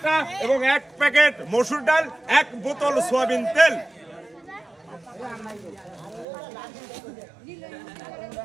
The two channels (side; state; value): left; drops out; at 6.2 s